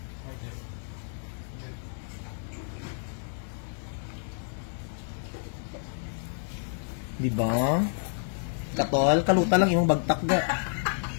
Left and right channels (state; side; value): silent; right; 58 dB below the other